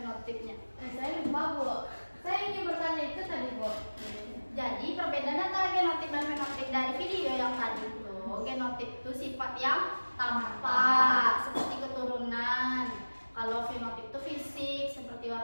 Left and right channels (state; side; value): inverted; both; correlation -1.00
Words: Saya lupa, Bu. Saya ingin bertanya itu tadi, Bu. Jadi perbedaan antara genotip dan fenotip dari video yang tadi itu, genotip itu sifat yang tampak seperti keturunan. Kalau fenotip itu fisik seperti